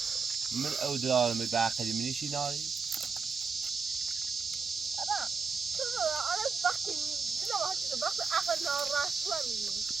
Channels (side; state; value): left; quieter; 5.1 dB